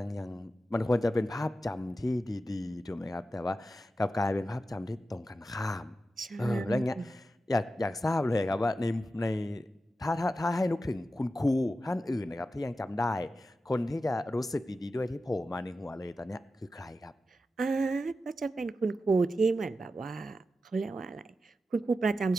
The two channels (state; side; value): normal; both; correlation 0.91